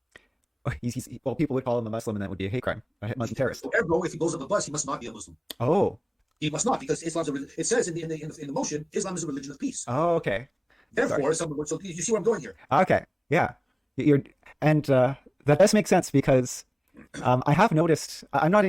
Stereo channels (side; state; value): both; identical; correlation 1.00